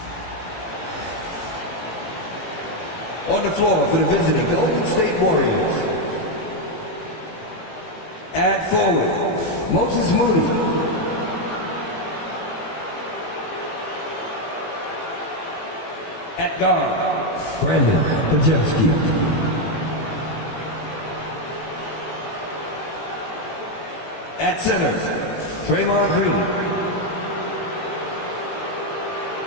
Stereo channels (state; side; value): late; right; 18 ms